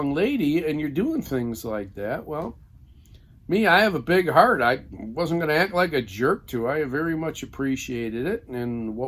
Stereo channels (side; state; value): both; identical; correlation 1.00